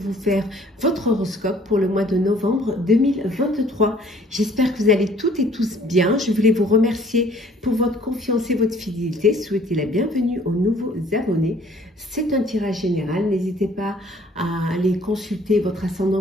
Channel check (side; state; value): both; normal; correlation 0.57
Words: faire votre horoscope pour le mois de novembre 2023. J'espère que vous allez toutes et tous bien. Je voulais vous remercier pour votre confiance et votre fidélité. Souhaiter la bienvenue aux nouveaux abonnés. C'est un tirage général. N'hésitez pas à aller consulter votre ascendant,